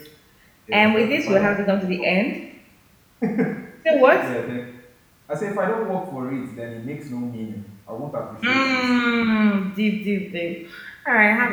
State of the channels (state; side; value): identical; both; correlation 1.00